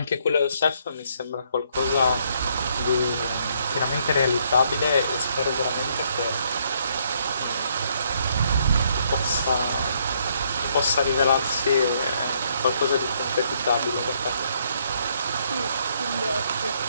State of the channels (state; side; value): inverted; both; correlation -0.69